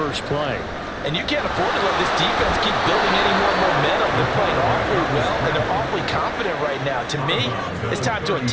play. And you can't afford to let this defense keep building any more momentum. They're playing awfully well, and they're awfully confident right now. To me, it's time to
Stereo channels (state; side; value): identical; both; correlation 1.00